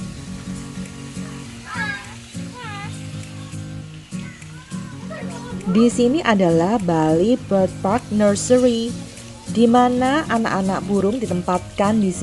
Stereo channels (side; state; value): both; identical; correlation 1.00